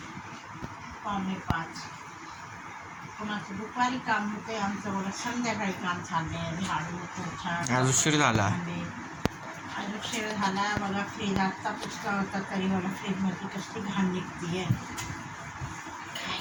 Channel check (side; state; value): both; identical; correlation 1.00